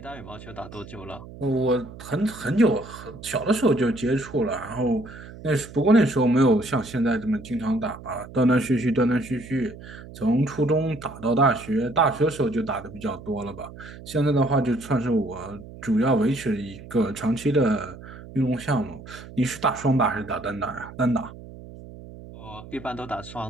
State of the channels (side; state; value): right; noise; hum, 16 dB below the sound